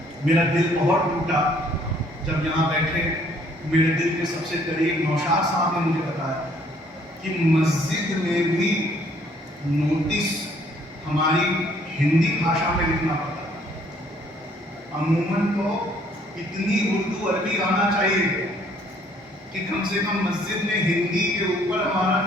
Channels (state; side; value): normal; both; correlation 0.62